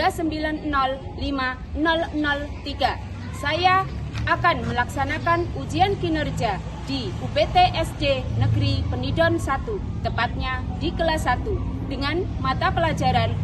Saya akan melaksanakan ujian kinerja di UPT SD Negeri Penidon 1, tepatnya di kelas 1, dengan mata pelajaran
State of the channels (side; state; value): both; identical; correlation 1.00